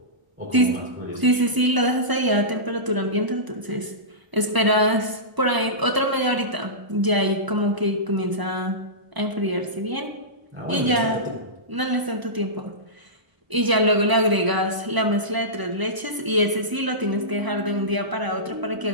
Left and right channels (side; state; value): left; late; 1.0 ms